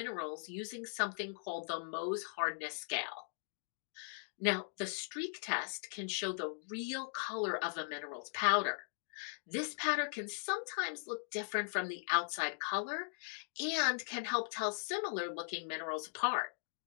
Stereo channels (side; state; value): right; silent; digital silence